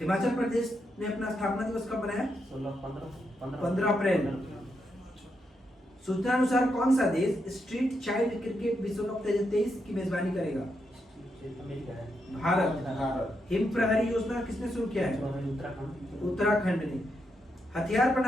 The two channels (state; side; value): normal; both; correlation 0.82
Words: हिमाचल प्रदेश ने अपना स्थापना दिवस कब मनाया? 15 अप्रैल। सूचना अनुसार कौन सा देश स्ट्रीट चाइल्ड क्रिकेट विश्व कप 2023 की मेजबानी करेगा? भारत। हिम प्रहरी योजना किसने शुरू किया है? उत्तराखंड ने। हथियार